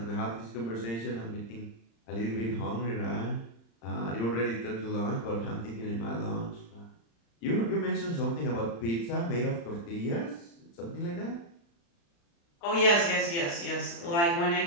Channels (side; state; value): right; late; 35 ms